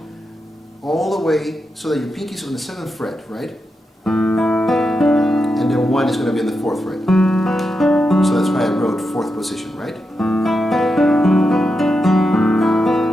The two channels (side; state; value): both; normal; correlation 0.87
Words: all the way so that your pinky is on the 7th fret, right? And then 1 is going to be in the 4th fret. So that's why I wrote 4th position, right?